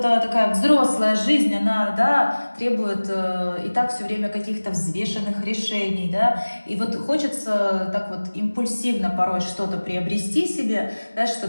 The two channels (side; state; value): both; inverted; correlation -1.00